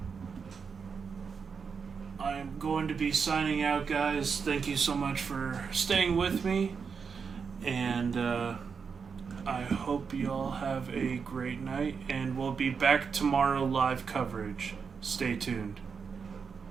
I am going to be signing out, guys. Thank you so much for staying with me. And I hope you all have a great night. And we'll be back tomorrow, live coverage. Stay tuned.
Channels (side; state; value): left; quieter; 5.9 dB